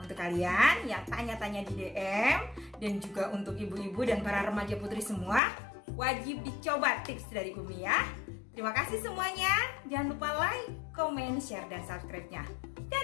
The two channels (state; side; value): drops out; right; at 5.4 s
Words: Untuk kalian yang tanya-tanya di DM dan juga untuk ibu-ibu dan para remaja putri semua, wajib dicoba tips dari Umi ya. Terima kasih semuanya. Jangan lupa like, comment, share, dan subscribe-nya.